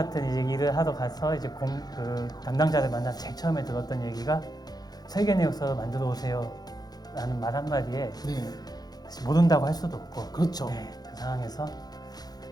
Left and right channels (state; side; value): late; right; 0.19 ms